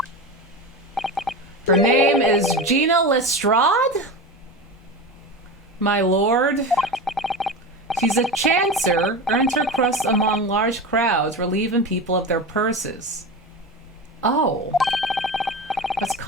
Her name is Gina Lestrade? My lord. She's a chancer, earns her crust among large crowds, relieving people of their purses. Oh. That's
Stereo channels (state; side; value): normal; both; correlation 0.25